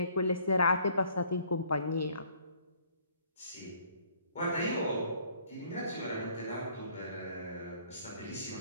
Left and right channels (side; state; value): both; inverted; correlation -0.59